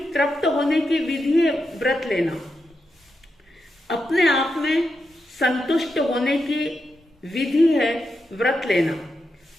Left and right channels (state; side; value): normal; both; correlation 0.86